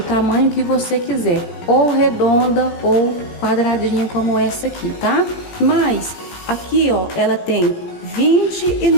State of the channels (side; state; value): right; late; 17 ms